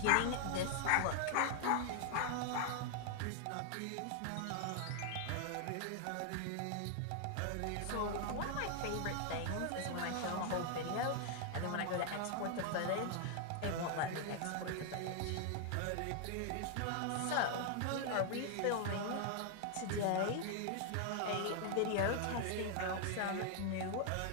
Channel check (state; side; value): different; both; correlation 0.00